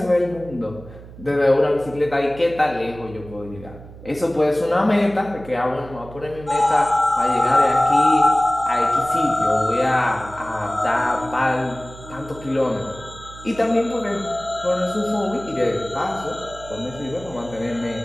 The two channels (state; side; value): noise; right; hum, 17 dB below the sound